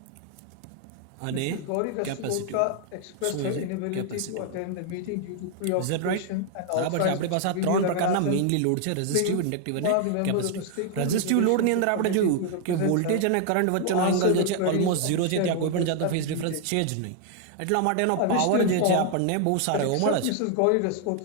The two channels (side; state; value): both; different; correlation 0.00